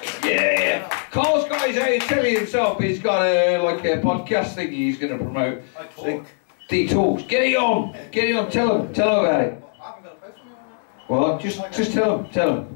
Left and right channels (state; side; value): silent; right; digital silence